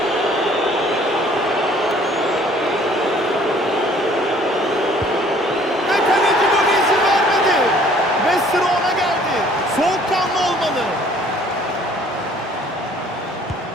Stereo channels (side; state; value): both; normal; correlation 0.56